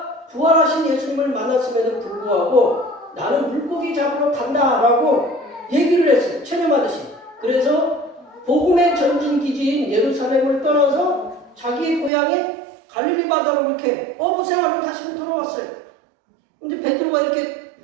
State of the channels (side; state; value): left; drops out; at 12.1 s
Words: 부활하신 예수님을 만났음에도 불구하고 나는 물고기 잡으러 간다라고 얘기를 했어요. 체념하듯이. 그래서 복음의 전진 기지인 예루살렘을 떠나서 자기 고향인 갈릴리 바다로 이렇게 어부 생활을 다시 돌아왔어요. 근데 베드로가 이렇게